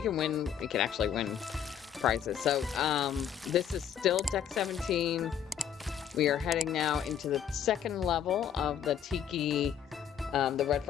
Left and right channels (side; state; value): right; quieter; 8.8 dB